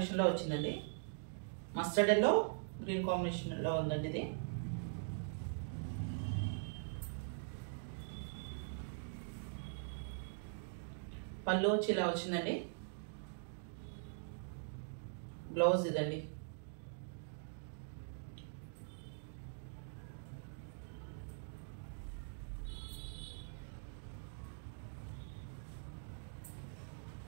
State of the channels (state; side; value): silent; left; digital silence